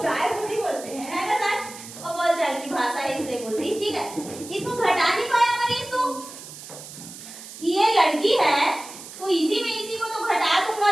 गाय नहीं बोलते हैं, है ना सर? और बोलचाल की भाषा है इसलिए बोलती। ठीक है, इसको घटा नहीं पाया मनीष तू कि ये लड़की है, तो इसी में इसी को तो घटा दूंगा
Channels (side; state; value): right; noise; hiss, 14 dB below the sound